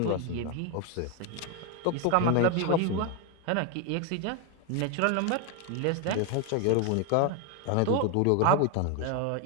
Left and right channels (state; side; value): different; both; correlation 0.01